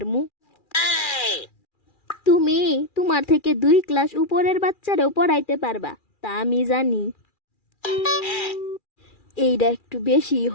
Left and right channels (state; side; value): late; right; 2.4 ms